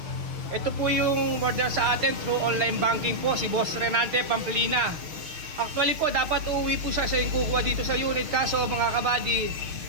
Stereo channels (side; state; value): left; late; 6.7 ms